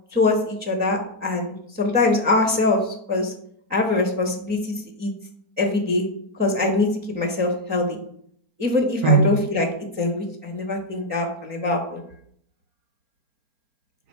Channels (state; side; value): late; left; 3.8 ms